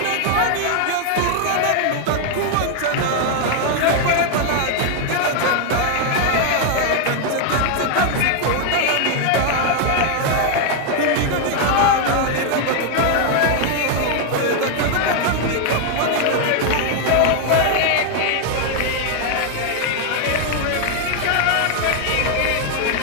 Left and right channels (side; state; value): both; different; correlation 0.00